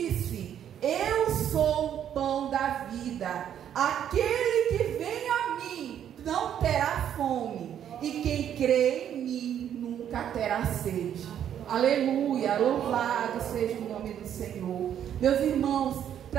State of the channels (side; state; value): left; quieter; 9.8 dB